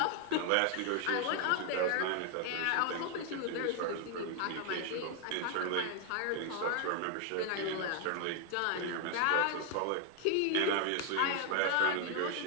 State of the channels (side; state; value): both; different; correlation 0.01